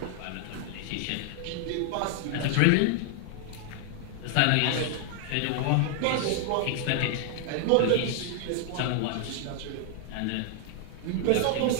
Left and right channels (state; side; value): different; both; correlation 0.00